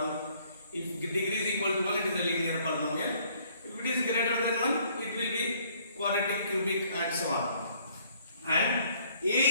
If degree is equal to 1, it is a linear polynomial. If it is greater than 1, it will be quadratic, cubic and so on. And a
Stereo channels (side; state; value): both; inverted; correlation -0.62